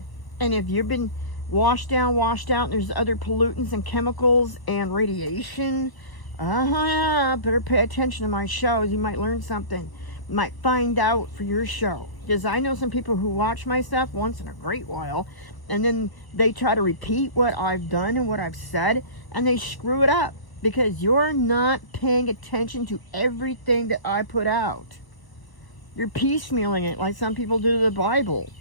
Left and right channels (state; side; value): late; right; 1.1 ms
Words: And if you've been washed out, and there's other pollutants and chemicals and radiation, better pay attention to my shows. You might learn something. You might find out for your show. Because I know some people who watch my stuff once in a great while, and then they try to repeat what I've done and what I've said, and they screw it up because you're not paying attention to everything that I put out. You're piecemealing it like some people do to the Bible.